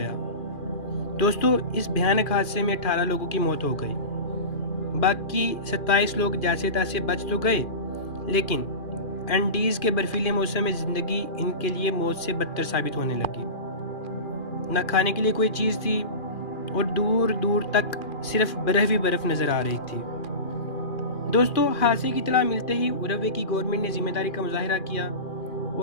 دوستو، اس بھیانک حادثے میں 18 لوگوں کی موت ہو گئی۔ باقی 27 لوگ جیسے تیسے بچ تو گئے، لیکن اینڈیز کے برفیلے موسم میں زندگی ان کے لیے موت سے بدتر ثابت ہونے لگی۔ نہ کھانے کے لیے کوئی چیز تھی اور دور دور تک صرف برف ہی برف نظر آ رہی تھی۔ دوستو، حادثے کی اطلاع ملتے ہی اروگوے کی گورنمنٹ نے ذمہ داری کا مظاہرہ کیا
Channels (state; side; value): late; right; 2.4 ms